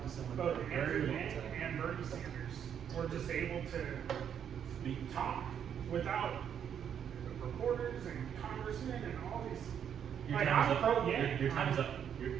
to someone Both for a very Andrew long time. and Bernie Sanders were just able to talk without reporters and congressmen and all these. Your Like, time is I'm up. pro- yeah. Your time is up.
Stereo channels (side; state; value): left; quieter; 8.6 dB